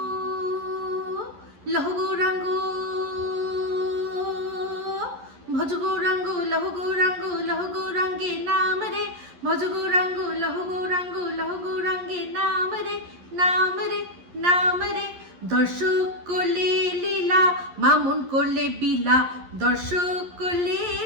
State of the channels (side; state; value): left; late; 11 ms